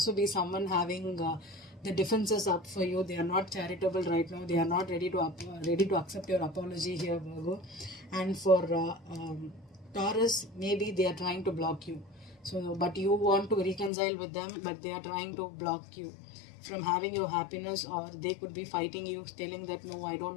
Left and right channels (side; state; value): right; drops out; at 13.9 s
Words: be someone having the defenses up for you. They are not charitable right now. They are not ready to accept your apology here, Virgo. And for Taurus, maybe they are trying to block you. So, but you want to reconcile with them, but they are trying to block you from having your happiness, or they could be fighting you, telling that no, I